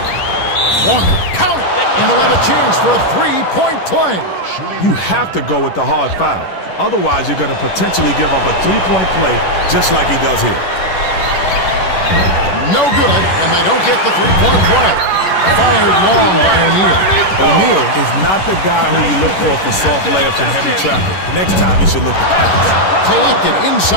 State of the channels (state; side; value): late; right; 11 ms